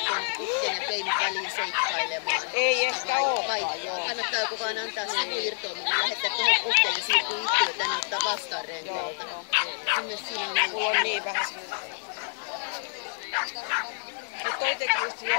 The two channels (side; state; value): right; silent; digital silence